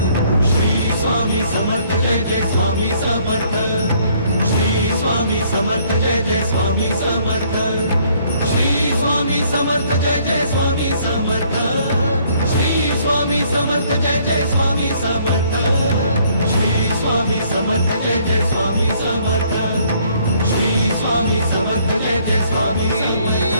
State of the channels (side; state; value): both; inverted; correlation -0.64